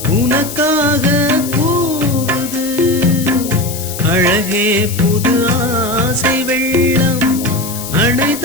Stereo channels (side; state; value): left; noise; hiss, 10 dB below the sound